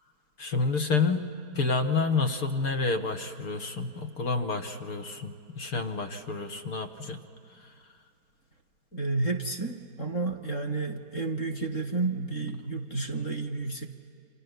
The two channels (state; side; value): late; right; 4.3 ms